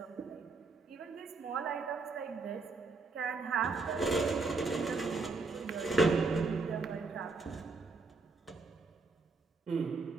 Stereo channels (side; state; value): left; quieter; 4.0 dB